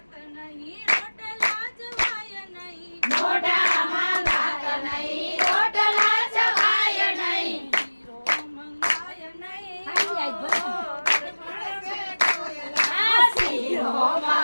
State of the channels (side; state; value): both; inverted; correlation -1.00